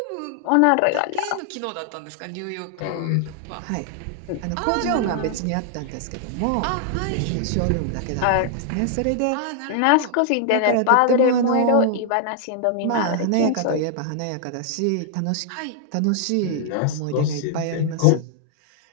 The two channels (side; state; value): both; different; correlation 0.00